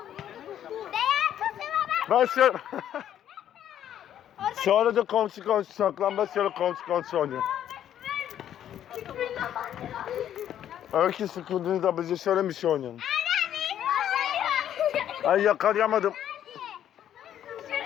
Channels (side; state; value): right; quieter; 10.6 dB